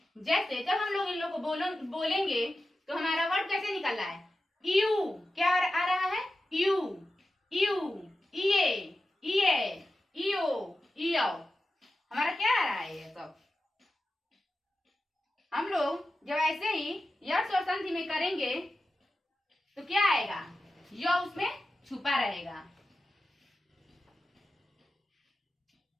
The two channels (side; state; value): both; normal; correlation 0.92